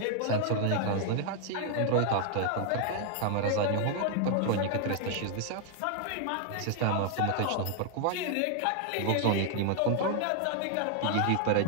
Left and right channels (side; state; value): both; different; correlation 0.00